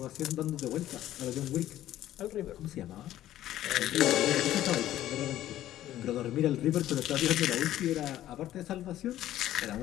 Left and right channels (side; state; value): right; quieter; 13.2 dB